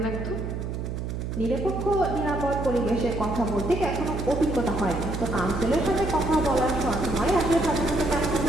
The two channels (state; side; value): noise; right; hum, 4 dB below the sound